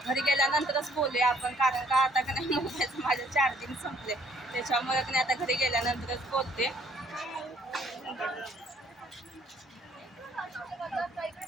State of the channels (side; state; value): both; normal; correlation 0.63